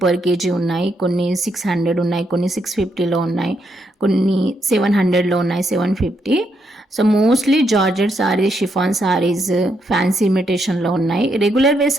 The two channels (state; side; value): normal; both; correlation 0.78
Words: పర్ కేజీ ఉన్నాయి, కొన్ని 600 ఉన్నాయి, కొన్ని 650లో ఉన్నాయి, కొన్ని 700లో ఉన్నాయి, 750. So mostly georgette saris, chiffon saris, fancy ఇమిటేషన్లో ఉన్నాయి. రెగ్యులర్ వేర్